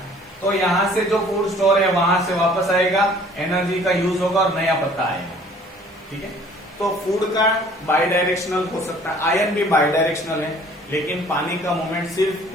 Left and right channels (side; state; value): both; normal; correlation 0.54